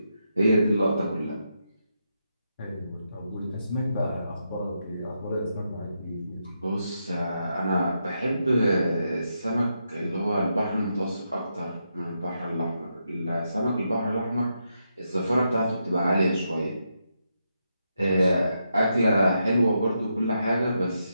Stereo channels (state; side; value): inverted; both; correlation -0.83